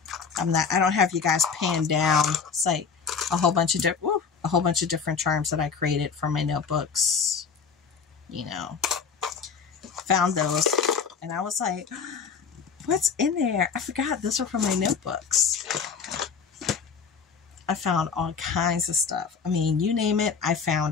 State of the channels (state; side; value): quieter; right; 6.0 dB